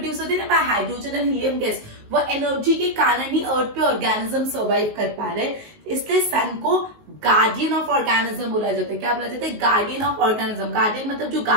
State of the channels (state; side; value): late; left; 19 ms